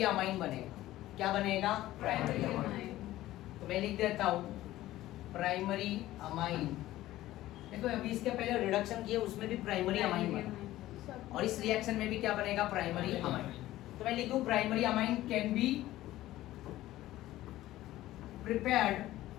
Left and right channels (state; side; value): quieter; right; 15.4 dB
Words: अमाइन बनेगा, क्या बनेगा, प्राइमरी अमाइन। तो मैं लिख देता हूं प्राइमरी अमाइन। देखो अभी इसके पहले रिडक्शन किए उसमें भी प्राइमरी अमाइन बना, और इस रिएक्शन में भी क्या बनेगा, प्राइमरी अमाइन। तो मैं लिखूं primary amine can be prepared